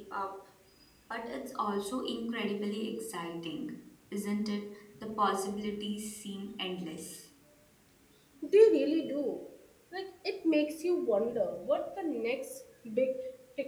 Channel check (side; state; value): both; identical; correlation 1.00